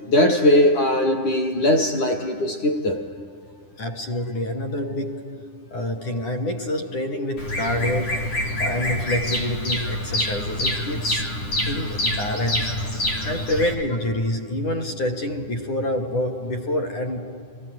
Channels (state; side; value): late; right; 9.9 ms